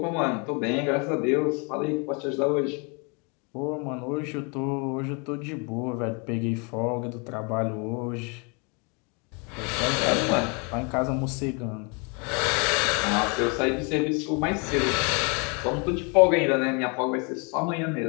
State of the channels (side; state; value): right; quieter; 33.5 dB